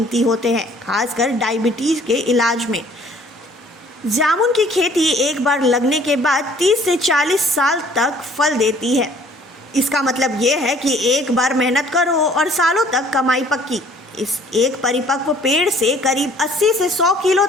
होते हैं, खासकर डायबिटीज के इलाज में। जामुन की खेती एक बार लगने के बाद 30 से 40 साल तक फल देती है। इसका मतलब ये है कि एक बार मेहनत करो और सालों तक कमाई पक्की। इस एक परिपक्व पेड़ से करीब 80 से 100 किलो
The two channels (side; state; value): both; normal; correlation 0.56